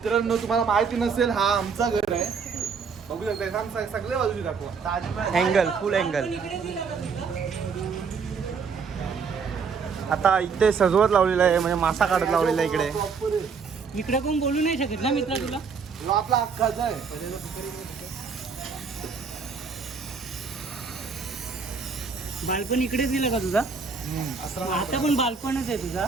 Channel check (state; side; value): quieter; left; 5.5 dB